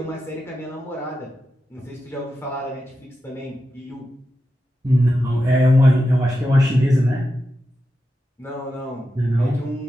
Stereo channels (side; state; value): both; normal; correlation 0.89